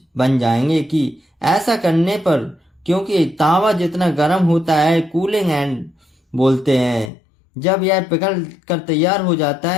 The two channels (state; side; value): drops out; right; at 7.1 s